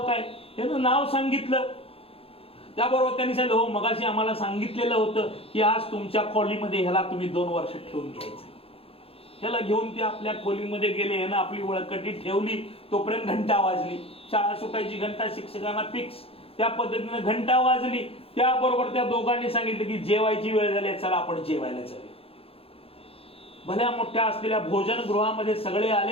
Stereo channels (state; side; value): late; right; 0.27 ms